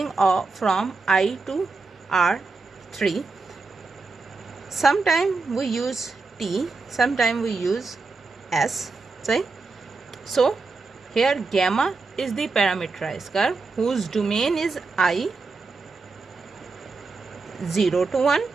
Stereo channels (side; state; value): left; quieter; 4.0 dB